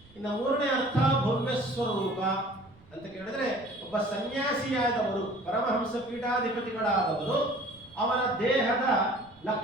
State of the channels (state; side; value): noise; right; rumble, 26 dB below the sound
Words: ಇನ್ನು ಮೂರನೇ ಅರ್ಥ ಭವ್ಯ ಸ್ವರೂಪ ಅಂತ ಕೇಳಿದ್ರೆ ಒಬ್ಬ ಸನ್ಯಾಸಿಯಾದವರು, ಪರಮಹಂಸ ಪೀಠಾಧಿಪತಿಗಳಾದವರು, ಅವರ ದೇಹದ